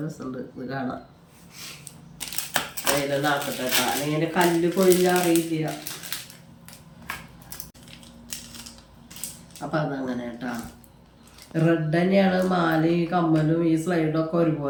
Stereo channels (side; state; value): both; identical; correlation 1.00